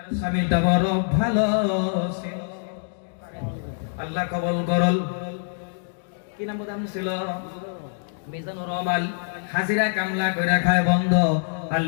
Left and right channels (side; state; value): right; silent; digital silence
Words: স্বামীটা বড় ভালো ছিল, আল্লাহ কবুল করল। কি নাম বলতে ছিল? মিজানুর রহমান। হাজিরা কামলা করে খায় বন্ধ,